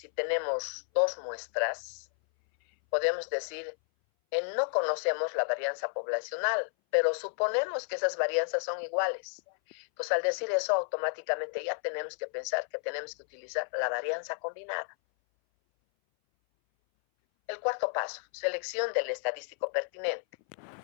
tenemos 2 muestras, podemos decir, no conocemos la varianza poblacional, pero suponemos que esas varianzas son iguales. Entonces, al decir eso, automáticamente ya tenemos que pensar que tenemos que utilizar la varianza combinada. El cuarto paso, selección del estadístico pertinente.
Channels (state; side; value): silent; right; 57 dB below the other